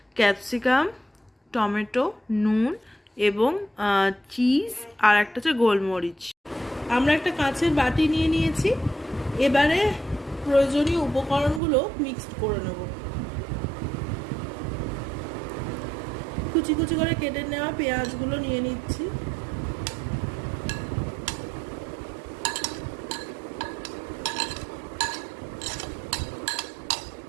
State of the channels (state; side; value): drops out; left; at 11.6 s